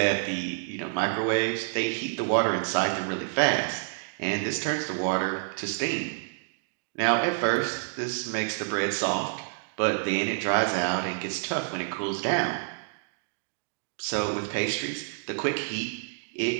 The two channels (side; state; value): left; silent; digital silence